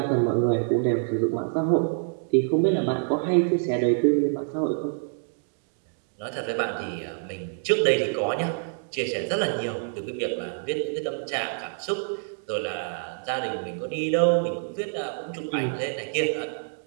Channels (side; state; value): left; silent; digital silence